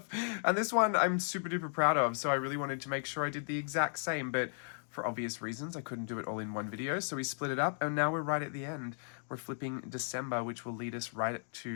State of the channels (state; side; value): silent; right; digital silence